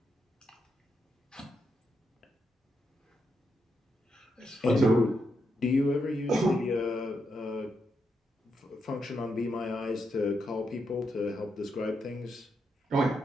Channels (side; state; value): both; normal; correlation 0.82